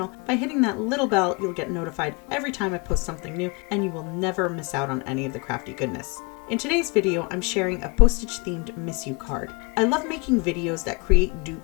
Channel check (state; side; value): quieter; right; 30.2 dB